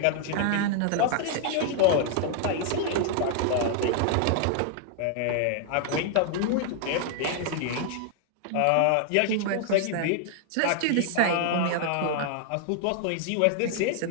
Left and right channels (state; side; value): different; both; correlation 0.00